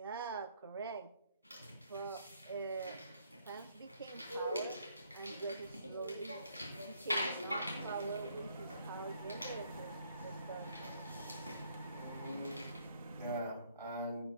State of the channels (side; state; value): both; inverted; correlation -0.68